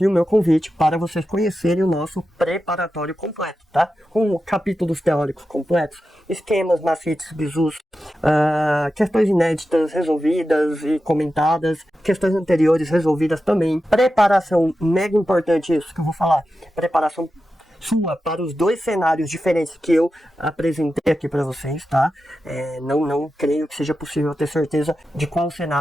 o meu convite para vocês conhecerem o nosso preparatório completo, tá? Com capítulos teóricos completos, esquemas, macetes, bizus, questões inéditas resolvidas e comentadas, questões anteriores resolvidas também, preparação, mega importante isso que eu vou falar, preparação sua para os dois cenários diferentes que eu apresentei aqui para vocês, tá? Não creio que seja possível ter certeza de qual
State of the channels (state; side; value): normal; both; correlation 0.91